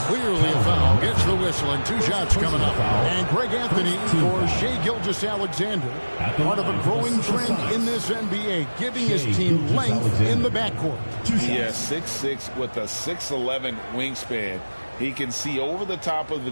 clearly a foul. Gets the whistle and two shots coming up. And Greg Anthony for Shai Gilgeous-Alexander. Part of a growing trend in this NBA, giving his team length in the backcourt. Yes, 6'6" with a 6'11" wingspan. He can see over the top of the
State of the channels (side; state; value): both; inverted; correlation -1.00